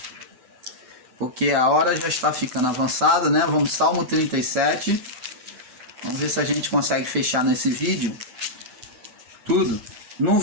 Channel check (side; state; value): left; late; 8.1 ms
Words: Porque a hora já está ficando avançada, né? Vamos, Salmo 37. Vamos ver se a gente consegue fechar nesse vídeo tudo. No